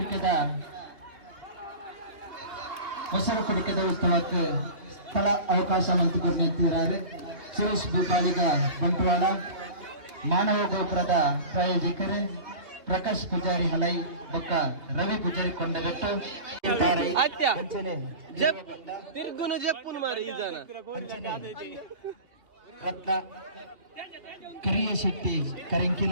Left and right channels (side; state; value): left; late; 2.8 ms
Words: ಉತ್ಸವಕ್ಕೆ ಸ್ಥಳ ಅವಕಾಶ ಮಂತುಕೊರ್ನಿದ್ದಾರೆ ಸುರೇಶ್ ಬೂಪಾಲಿಗ ಬಂಟ್ವಾಳ ಮಾನವ ಗೋಪುರದ ಪ್ರಾಯೋಜಕರೇ ಪ್ರಕಾಶ್ ಪೂಜಾರಿ ಹಲೈ ಬೊಕ್ಕ ರವಿ ಪೂಜಾರಿ ಕೊಂಡಗಟ್ಟು ತಿರ್ಗುನು ಜಪ್ಪುನು ಮಾರಿ ಈ ಜನ ರತ್ನ ಕರಿಯ ಶೆಟ್ಟಿ ಕರಿಂಕಿಲ